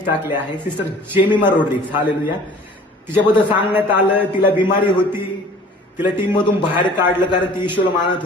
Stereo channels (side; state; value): both; normal; correlation 0.48